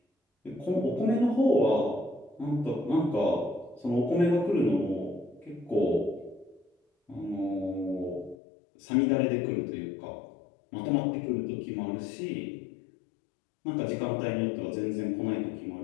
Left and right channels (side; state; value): right; drops out; at 8.3 s